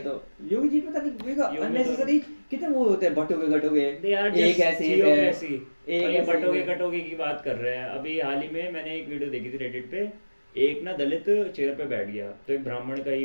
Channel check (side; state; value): both; inverted; correlation -1.00